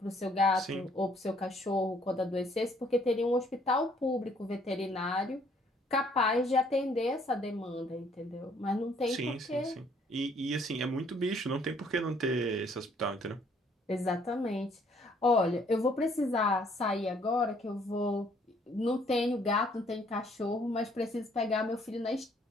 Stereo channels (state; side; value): normal; both; correlation 0.63